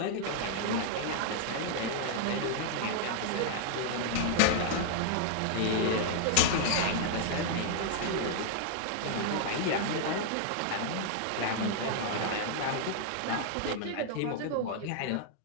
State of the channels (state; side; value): different; both; correlation -0.01